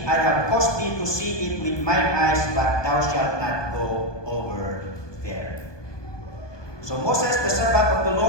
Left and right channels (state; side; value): late; right; 1.2 ms